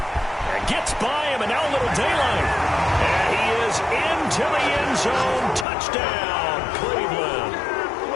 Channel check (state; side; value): drops out; right; at 5.7 s